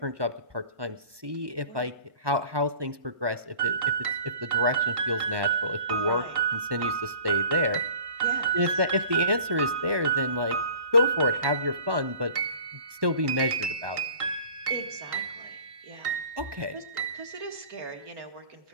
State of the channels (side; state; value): left; late; 1.2 ms